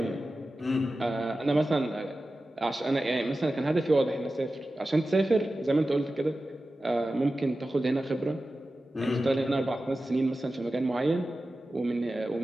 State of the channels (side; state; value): both; normal; correlation 0.94